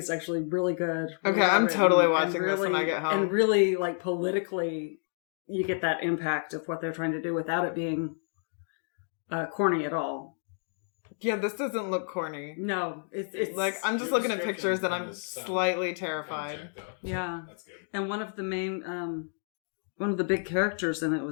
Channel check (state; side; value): silent; right; 58 dB below the other